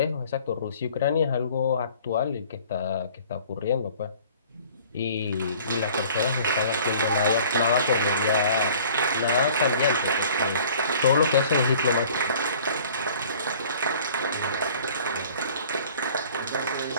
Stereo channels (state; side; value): inverted; both; correlation -0.51